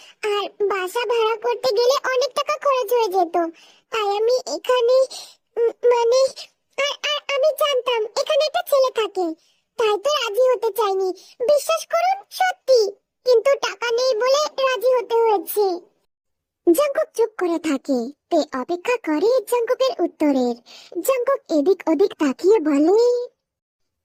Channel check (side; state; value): both; identical; correlation 1.00